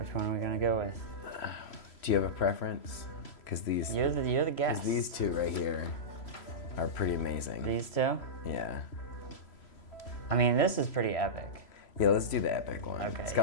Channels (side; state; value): right; late; 3.0 ms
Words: one are we gonna go with? Do you have a preference? Because these... You're the guest. Because these two right here are pretty amazing. These two? Yeah. I mean, this is pretty epic. Yeah, let's do the epic one. Okay. It's got